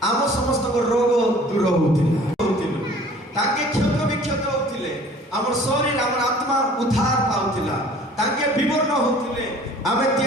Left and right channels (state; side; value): normal; both; correlation 0.50